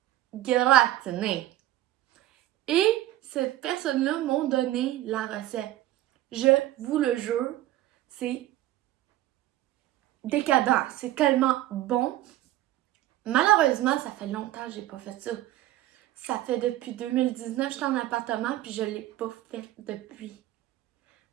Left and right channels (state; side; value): quieter; left; 14.8 dB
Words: gratinée. Et cette personne-là m'a donné la recette. Je vous le jure, c'est décadent. C'est tellement bon. Malheureusement, ça fait longtemps que j'ai pas fait ça. Ça fait depuis 2019, j'étais en appartement, puis je l'ai pas fait depuis.